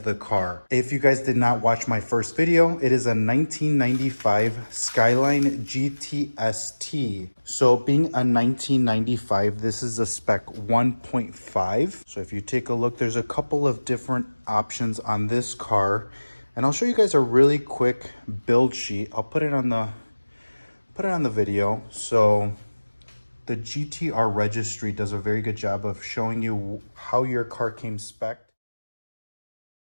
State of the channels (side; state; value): both; inverted; correlation -1.00